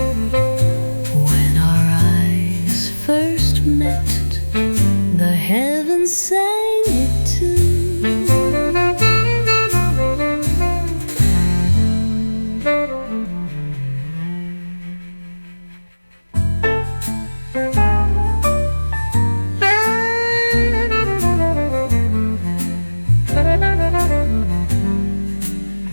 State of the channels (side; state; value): both; inverted; correlation -1.00